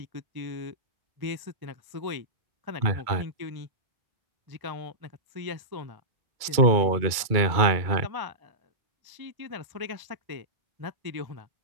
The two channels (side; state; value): left; late; 2.3 ms